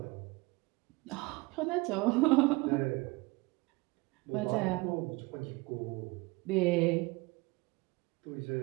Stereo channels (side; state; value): left; quieter; 24.2 dB